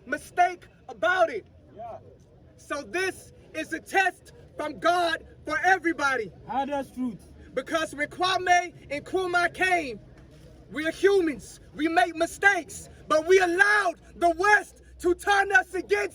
mistake about it. So this is a test from God for everybody. That's truth. Because when Kwame and Nkrumah came, we are humans. We make mistakes. But we allowed the West to turn us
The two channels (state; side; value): identical; both; correlation 1.00